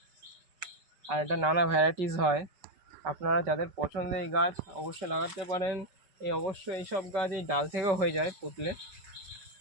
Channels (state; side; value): late; left; 5.3 ms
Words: আর এটা নানা ভ্যারাইটিস হয়। আপনারা যাদের পছন্দ এই গাছ অবশ্যই লাগাতে পারেন। অবশ্যই এইসব গাছ এই ডাল থেকেও হয়ে যায় পুতলে,